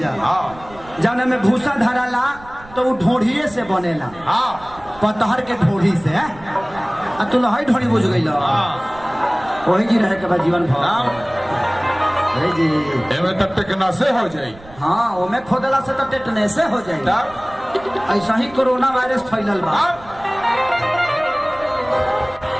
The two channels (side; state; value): right; noise; rumble, 21 dB below the sound